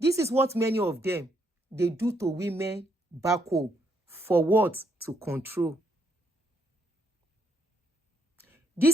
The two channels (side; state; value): both; normal; correlation 0.74